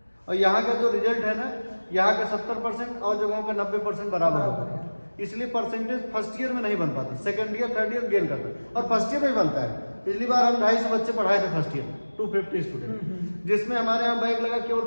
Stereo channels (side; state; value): both; inverted; correlation -1.00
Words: और यहाँ का जो रिजल्ट है ना, यहाँ का 70% और जगहों का 90% बराबर होता है। इसलिए परसेंटेज फर्स्ट ईयर में नहीं बन पाता, second year third year gain करता है, और फर्स्ट ईयर में ही बनता है। पिछली बार हम 250 बच्चे पढ़ाए थे फर्स्ट ईयर, 250 स्टूडेंट, जिसमें हमारे यहाँ बैग लगा केवल